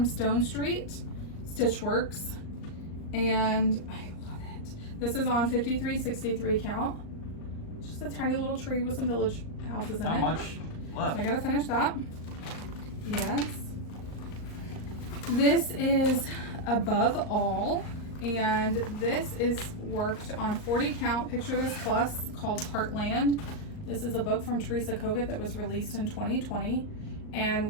Stone Street Stitchworks, and I love it. This is on 5363 count. Just a tiny little tree with some village houses in it. Not much left. So I gotta finish that. Yes. This is Above All, and this is worked on 40 count Picture This Plus called Heartland. This is a book from Teresa Kogut that was released in 2020, and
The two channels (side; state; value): right; late; 39 ms